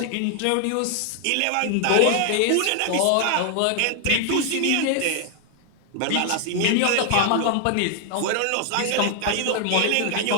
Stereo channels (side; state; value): both; different; correlation 0.00